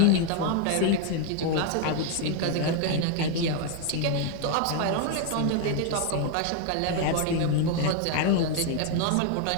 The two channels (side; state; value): both; different; correlation 0.00